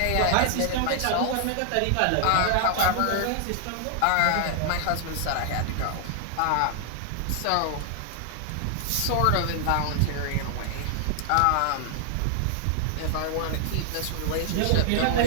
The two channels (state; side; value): different; both; correlation 0.00